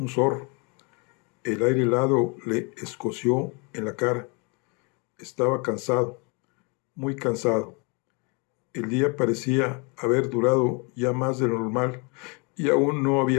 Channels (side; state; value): right; quieter; 32.1 dB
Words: zorro. El aire helado le escoció en la cara. Estaba cansado, muy cansado. El día parecía haber durado ya más de lo normal y aún no